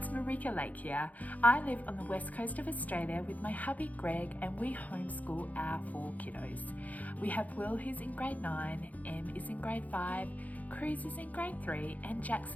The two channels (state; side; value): late; right; 0.076 ms